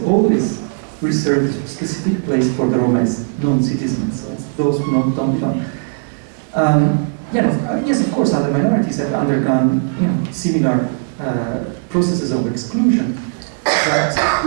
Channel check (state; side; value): silent; left; digital silence